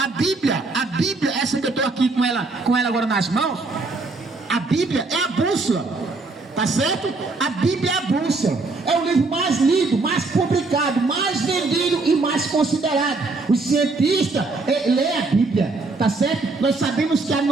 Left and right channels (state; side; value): quieter; left; 3.6 dB